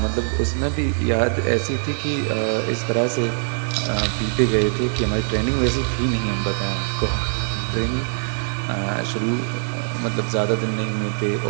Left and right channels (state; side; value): silent; left; digital silence